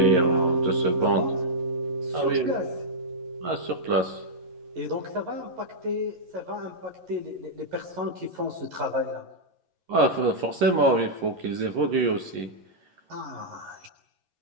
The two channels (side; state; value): left; late; 11 ms